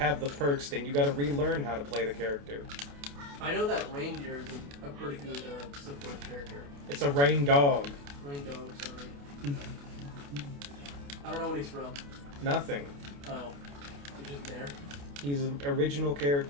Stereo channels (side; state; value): left; late; 28 ms